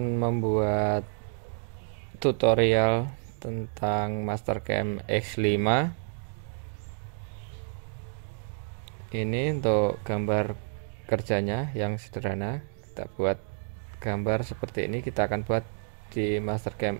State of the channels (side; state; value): left; silent; digital silence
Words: membuat tutorial tentang Mastercam X5. Ini untuk gambar kerjanya yang sederhana. Kita buat gambar seperti ini, kita akan buat di Mastercam